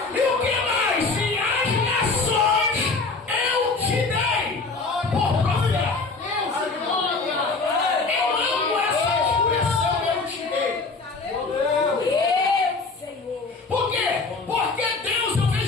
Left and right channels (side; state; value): right; quieter; 4.0 dB